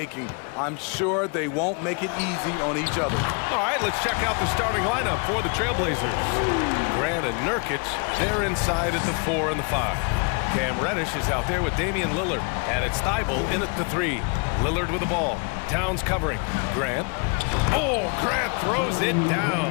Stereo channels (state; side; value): quieter; right; 34.8 dB